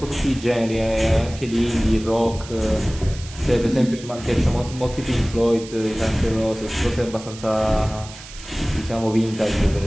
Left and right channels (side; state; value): right; noise; hiss, 16 dB below the sound